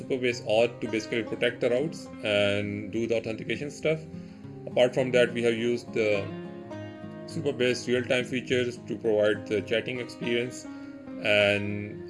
Auth to basically protect the routes and do the authentication stuff. Apart from that, we have used the Supabase real-time features to provide the chatting experience,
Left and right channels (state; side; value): identical; both; correlation 1.00